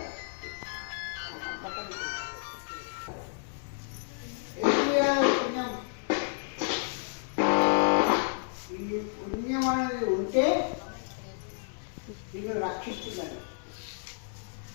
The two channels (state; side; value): silent; right; digital silence